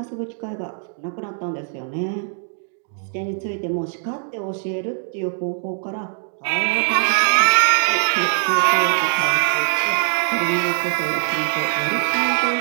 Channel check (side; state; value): left; silent; digital silence